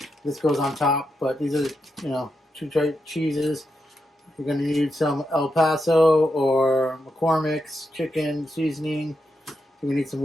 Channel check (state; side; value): normal; both; correlation 0.85